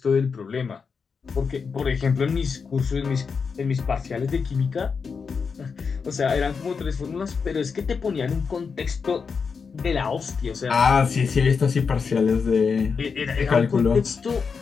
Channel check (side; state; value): right; quieter; 5.5 dB